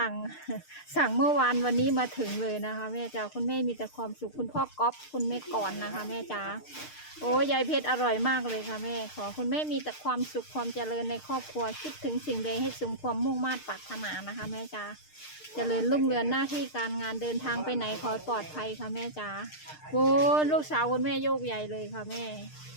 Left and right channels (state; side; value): late; right; 6.6 ms